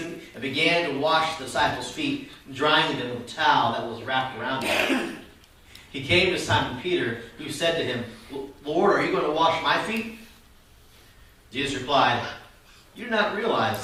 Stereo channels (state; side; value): identical; both; correlation 1.00